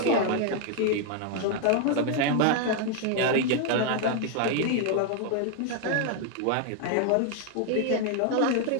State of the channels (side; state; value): both; different; correlation 0.00